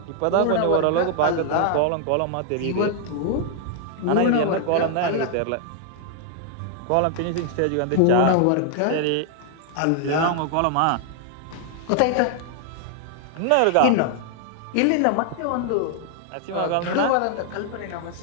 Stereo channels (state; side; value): different; both; correlation 0.00